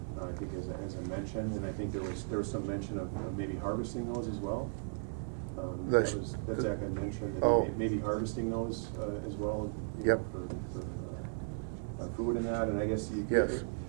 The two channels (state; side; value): silent; left; digital silence